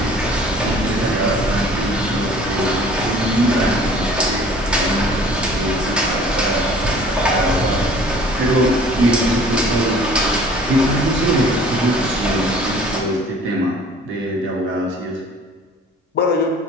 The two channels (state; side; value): normal; both; correlation 0.50